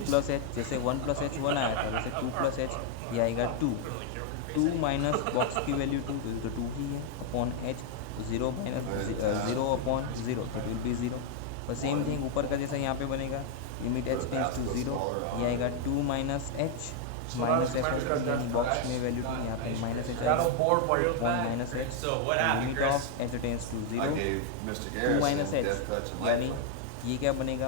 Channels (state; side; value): different; both; correlation 0.00